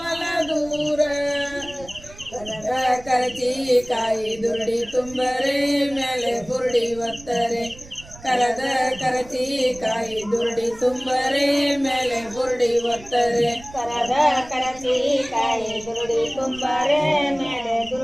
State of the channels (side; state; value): right; noise; rumble, 19 dB below the sound